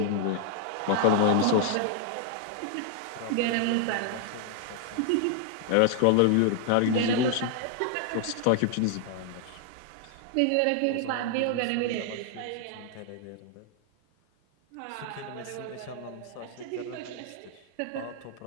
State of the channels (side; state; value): both; different; correlation 0.00